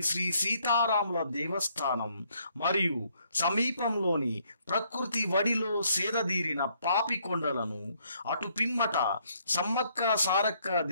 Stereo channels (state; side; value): inverted; both; correlation -0.69